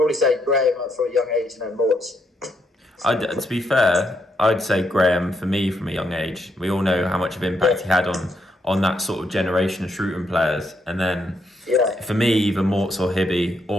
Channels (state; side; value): normal; both; correlation 0.77